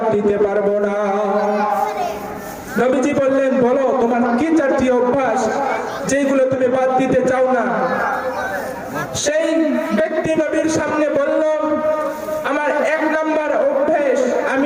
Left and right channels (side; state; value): both; identical; correlation 1.00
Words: দিতে পারবো না। নবীজি বললেন, বলো তোমার কি 4টি অভ্যাস যেগুলো তুমি বাদ দিতে চাও না? সেই ব্যক্তি নবীর সামনে বলল, আমার 1 নম্বর অভ্যাস